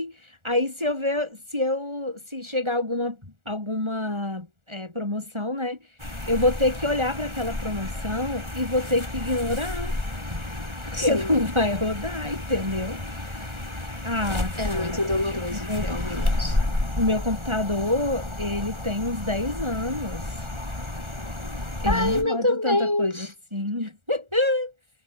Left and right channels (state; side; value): late; left; 1.4 ms